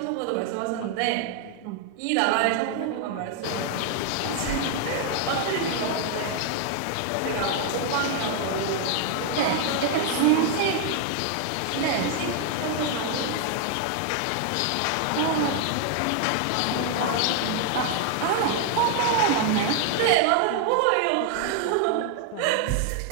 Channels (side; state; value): both; different; correlation 0.00